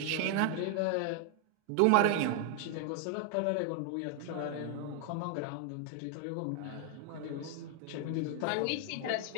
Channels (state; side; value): different; both; correlation 0.00